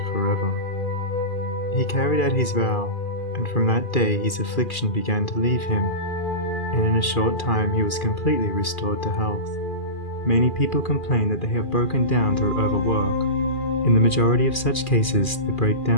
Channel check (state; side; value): late; right; 2.4 ms